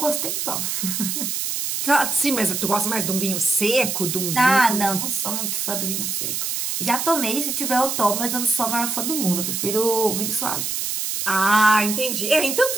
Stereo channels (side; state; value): right; noise; hiss, 2 dB below the sound